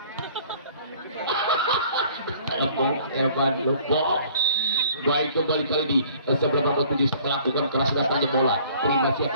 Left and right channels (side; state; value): both; inverted; correlation -0.55